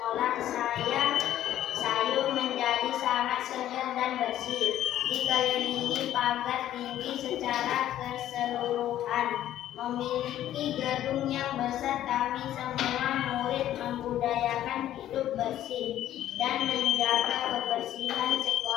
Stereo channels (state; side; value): quieter; right; 12.4 dB